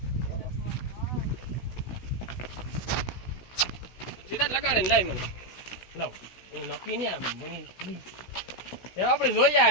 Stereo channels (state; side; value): late; right; 16 ms